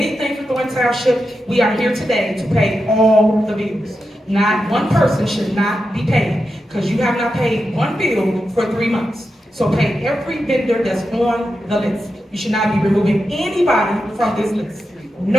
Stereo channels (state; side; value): normal; both; correlation 0.89